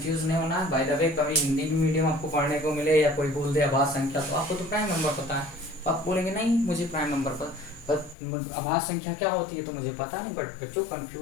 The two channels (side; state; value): right; drops out; at 8.2 s